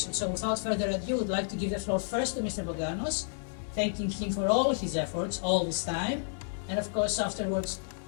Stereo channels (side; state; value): right; silent; digital silence